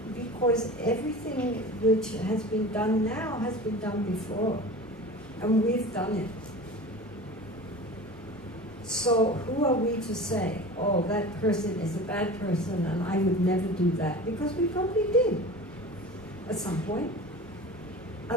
because everything which has been done now has been done before. And we've done it. So who are we to say, oh, that person is a bad person and I would never do that? Because we probably did at some point.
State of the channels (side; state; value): both; normal; correlation 0.35